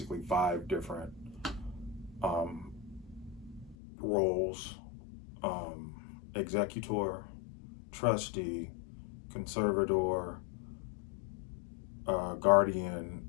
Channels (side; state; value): right; drops out; at 3.8 s